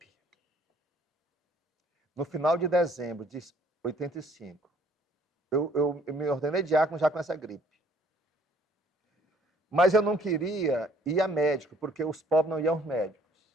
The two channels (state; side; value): normal; both; correlation 0.60